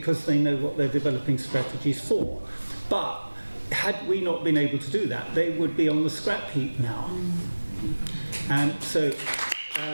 they know what they're developing strategies for. But had we not been able to do that, they would be on the scrap heap now. And so,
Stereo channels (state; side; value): inverted; both; correlation -1.00